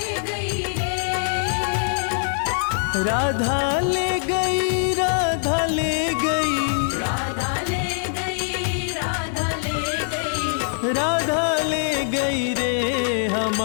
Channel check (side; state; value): right; silent; 63 dB below the other